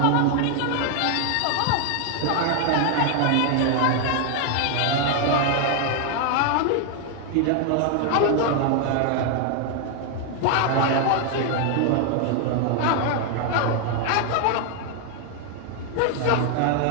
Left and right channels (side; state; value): both; different; correlation 0.00